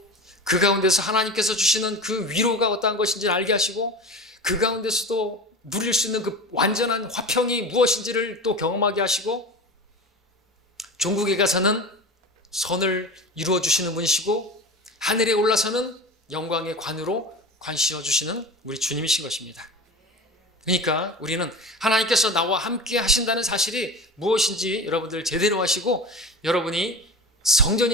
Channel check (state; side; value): normal; both; correlation 0.31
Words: 그 가운데서 하나님께서 주시는 그 위로가 어떠한 것인지를 알게 하시고 그 가운데서도 누릴 수 있는 그 완전한 화평이 무엇인지를 또 경험하게 하시고 종국에 가서는 선을 이루어 주시는 분이시고 하늘에 올라서는 영광의 관으로 관시어 주시는 우리 주님이신 것입니다. 그러니까 우리는 하나님께서 나와 함께 하신다는 사실이 무엇인지 여러분들 제대로 하시고 여러분이